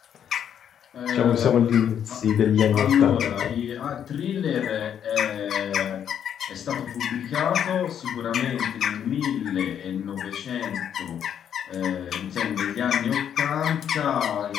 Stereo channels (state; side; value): quieter; right; 9.0 dB